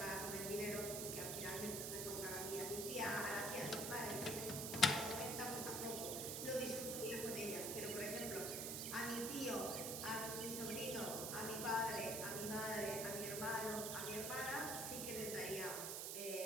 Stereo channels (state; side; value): noise; right; hiss, 2 dB below the sound